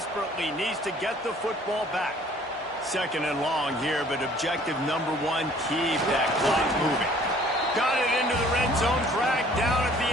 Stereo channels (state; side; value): normal; both; correlation 0.55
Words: needs to get the football back. 2nd and long here, but objective number 1, keep that clock moving. Got it into the red zone, dragged down at the